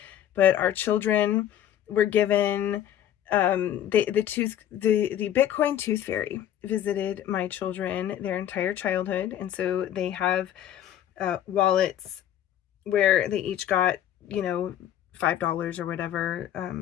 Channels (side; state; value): right; quieter; 11.1 dB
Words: But our children were given the Bitcoin Tooth Fairy visited my children their entire childhood, and so they have wallets where they each got $5 or whatever